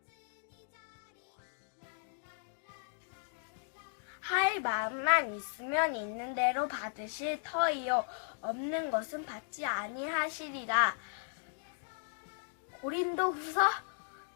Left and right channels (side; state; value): right; silent; digital silence